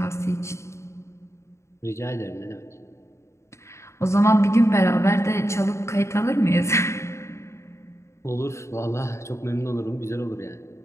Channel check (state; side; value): late; right; 0.14 ms